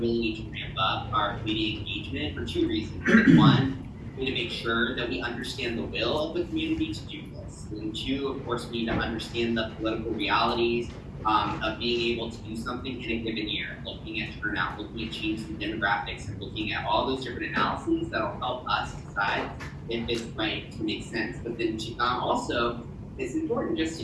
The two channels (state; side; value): identical; both; correlation 1.00